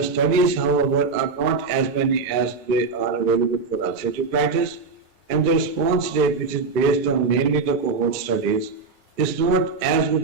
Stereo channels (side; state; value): left; quieter; 4.4 dB